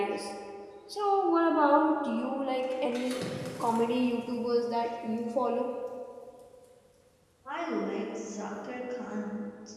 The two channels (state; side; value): identical; both; correlation 1.00